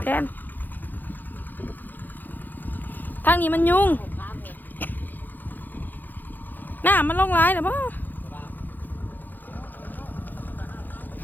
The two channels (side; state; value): right; late; 0.087 ms